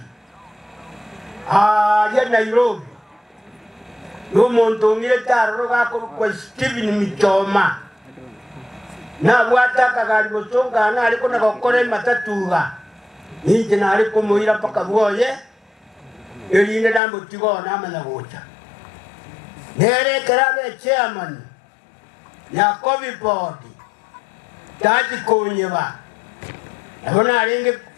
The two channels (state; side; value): drops out; right; at 17.0 s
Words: ya Nairobi n'omuntu ngire taroro gakorwa Stephen Mitoma na bwata kagari bosonga na aliko na gokore matatuga ninje na aliko muira paka bwoye elinde nambo tigo na amana gocha nere karabe chairman ya COVID board taji konyeba abona alinge